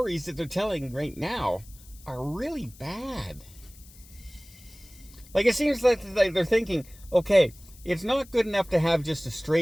that they're telling right now are really bad. Like, it seems like they're thinking, okay, it's not good enough to have just a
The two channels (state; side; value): noise; left; hiss, 23 dB below the sound